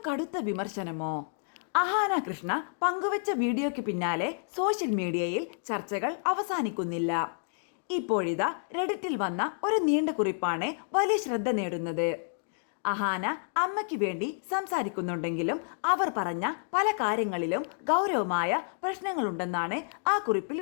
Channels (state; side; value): silent; right; digital silence